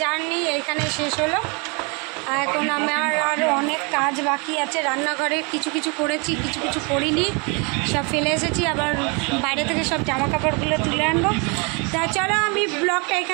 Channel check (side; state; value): left; quieter; 32.3 dB